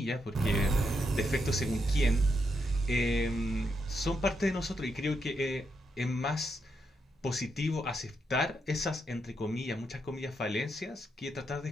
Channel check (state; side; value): normal; both; correlation 0.81